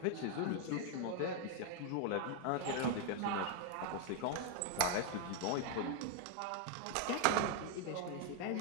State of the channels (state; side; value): different; both; correlation 0.00